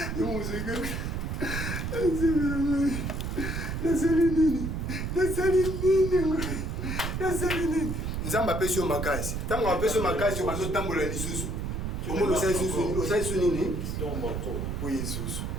Nzamba apesi yo makasi. Ntango apesi yo makasi obazotambola lisusu. Omoni osali su nini? Po Yesusu.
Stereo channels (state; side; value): noise; right; rumble, 3 dB below the sound